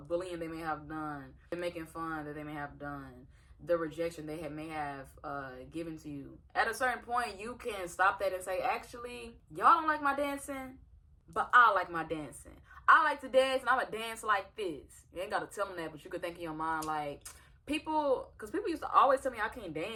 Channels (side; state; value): both; identical; correlation 1.00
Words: bullying they may have done, the making fun that they may have done, the rejection they may have given to you. At a certain point, you can stop that and say, actually, y'all don't like my dancing, but I like my dancing. I like to dance, and I'm going to dance like this. You ain't got to tell them that, but you could think in your mind, like, because people used to always tell me I can't